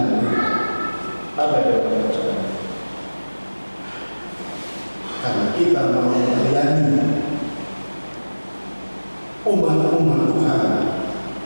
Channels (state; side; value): inverted; both; correlation -1.00